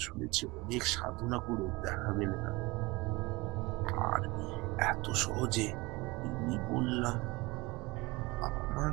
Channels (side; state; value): left; quieter; 23.3 dB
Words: শুনেছি অনেক সাধনা করে দেখা মেলে না। আর এত সহজে আমি বললাম, আমার